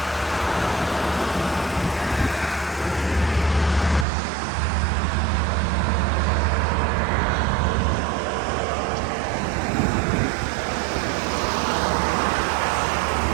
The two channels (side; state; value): left; drops out; at 4.0 s